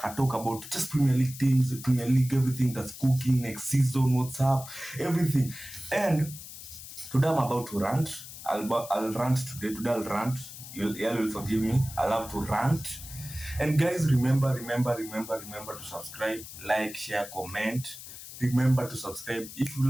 talk about just Premier League teams, Premier League, everything that's cooking next season, what's up, everything. And today I'm about to rant. I'll rant today. Today I'll rant. You'll forgive me. I'll have to rant. And guys, remember to subscribe, like, share, comment. Remember to subscribe. If you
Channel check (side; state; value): left; noise; hiss, 13 dB below the sound